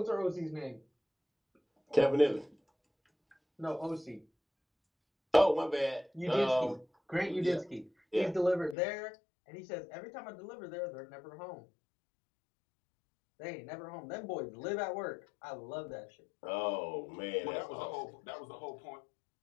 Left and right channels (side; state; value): right; drops out; at 8.8 s